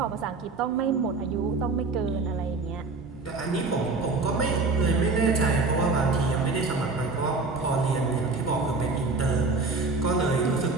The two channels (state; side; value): quieter; left; 3.8 dB